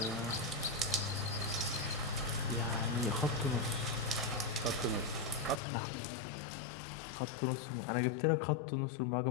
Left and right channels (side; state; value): right; drops out; at 5.6 s